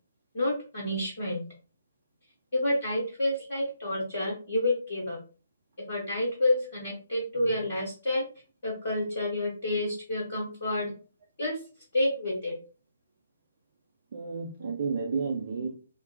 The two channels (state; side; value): inverted; both; correlation -0.78